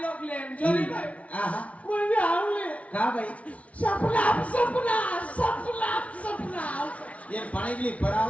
लोक लेन जोली भाई आहा मुझे आवले का भाई सपना ये पानी के लिए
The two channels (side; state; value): right; late; 0.065 ms